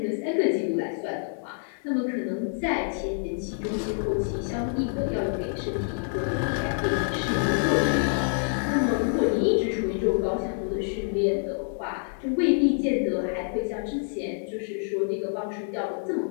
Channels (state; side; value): silent; right; 60 dB below the other